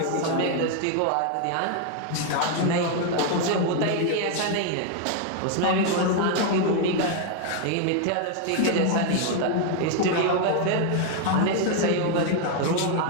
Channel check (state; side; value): different; both; correlation 0.01